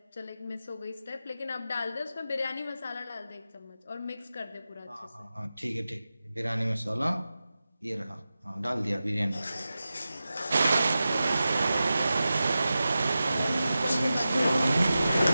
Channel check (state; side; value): inverted; both; correlation -0.93